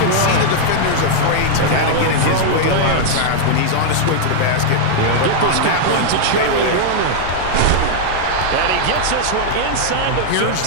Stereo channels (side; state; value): both; different; correlation -0.01